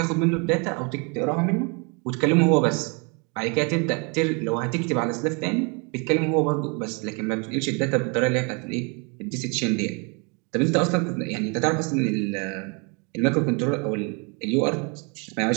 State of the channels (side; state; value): left; quieter; 33.3 dB